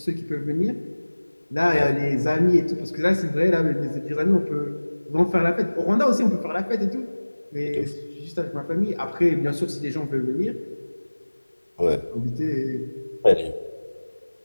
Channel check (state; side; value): inverted; both; correlation -1.00